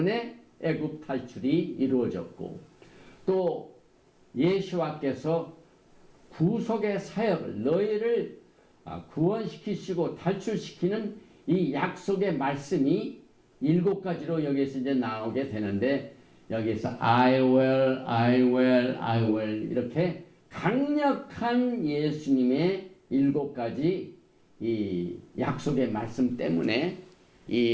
애굽 탈출이 이루어졌고 또 예수와께서 구속의 사역을 너희를 구원시키시고 탈출시키는 이 약속의 말씀이 7가지로 여기서 이제 나오게 되는데 여기서 I will, I will, I will 이렇게 강력한 예수님의 7가지 이 약속의 말씀 때문에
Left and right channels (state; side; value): identical; both; correlation 1.00